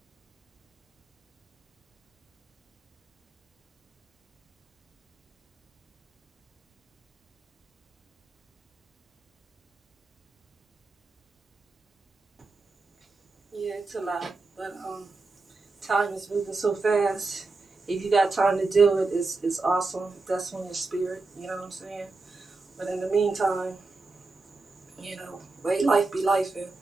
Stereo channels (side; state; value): left; quieter; 3.6 dB